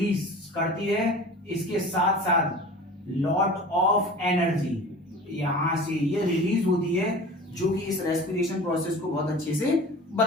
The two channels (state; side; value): normal; both; correlation 0.39